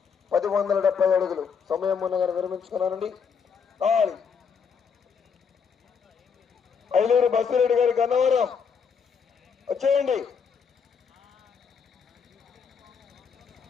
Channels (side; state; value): right; quieter; 6.2 dB